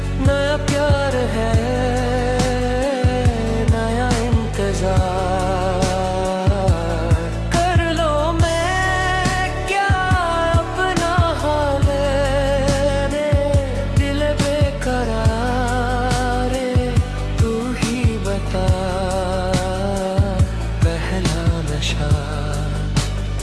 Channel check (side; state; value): both; identical; correlation 1.00